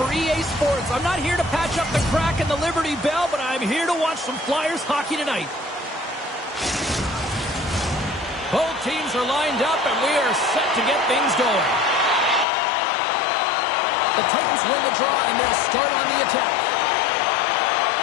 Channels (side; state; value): right; drops out; at 12.5 s